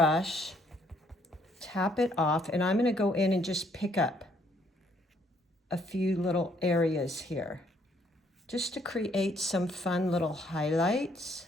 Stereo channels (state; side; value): normal; both; correlation 0.67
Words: tap it off, and I'm going to go in and just pick up a few little areas here, just to create some fun little highlights